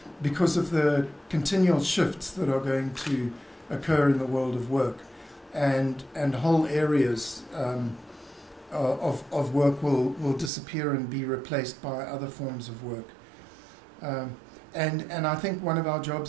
because of the continual shifts that are going to occur in the world of work. And whole areas of work will disappear and be replaced by other forms of work. And I think one of our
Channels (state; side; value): drops out; left; at 10.5 s